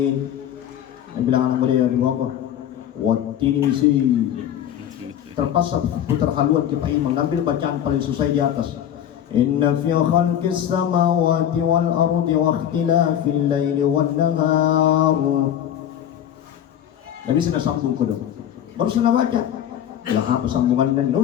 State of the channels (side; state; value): right; quieter; 10.3 dB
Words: Dia bilang anak muda di bawah, waktu ini sih. Terpaksa putar haluan ke Pak Imam, ambil bacaan paling susah di atas. Inna fi khalqis samawati wal ardi wa ikhtilafil laili wan nahar. Nabi sudah sambung kodok. Baru sudah baca. Lah apa sambungan dan